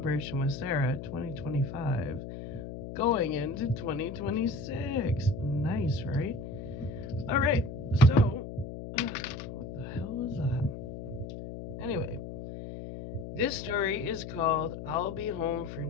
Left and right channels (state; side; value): noise; left; hum, 9 dB below the sound